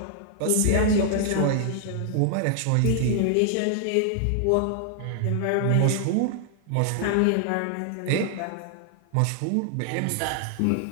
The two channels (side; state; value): both; different; correlation 0.00